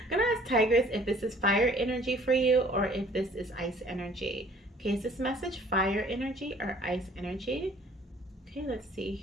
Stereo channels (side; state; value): both; normal; correlation 0.54